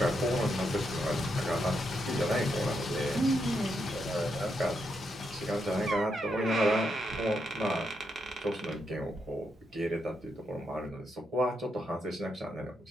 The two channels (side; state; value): both; normal; correlation 0.81